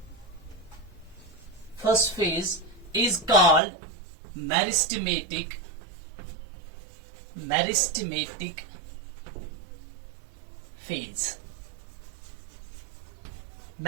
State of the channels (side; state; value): left; drops out; at 3.6 s